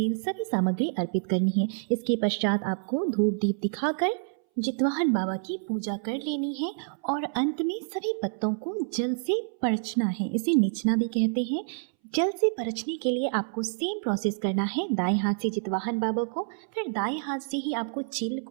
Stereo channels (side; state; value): left; silent; 59 dB below the other